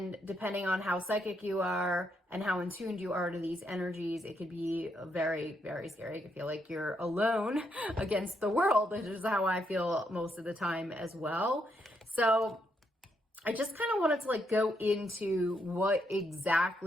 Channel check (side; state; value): both; normal; correlation 0.77